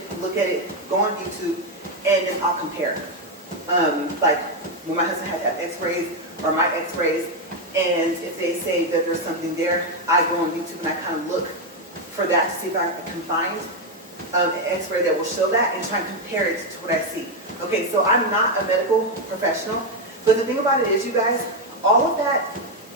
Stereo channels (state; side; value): normal; both; correlation 0.05